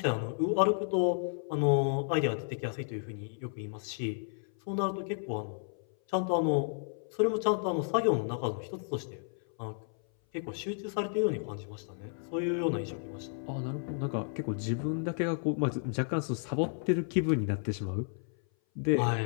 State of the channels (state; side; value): silent; right; 56 dB below the other